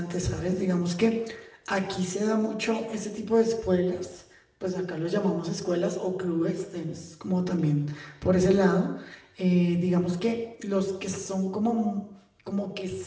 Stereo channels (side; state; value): both; identical; correlation 1.00